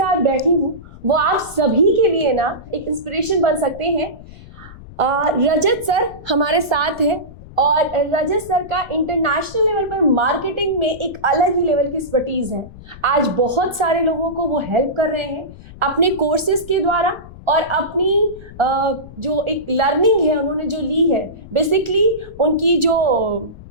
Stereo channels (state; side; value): noise; left; rumble, 18 dB below the sound